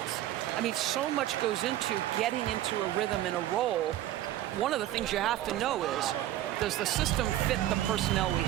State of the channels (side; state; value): left; quieter; 13.5 dB